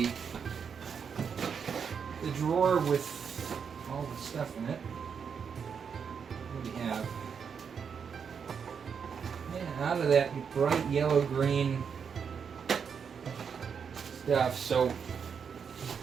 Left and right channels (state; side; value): quieter; left; 6.7 dB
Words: drawer with all the stuff in it. What do we have? Yeah, out of that bright yellow-green stuff. So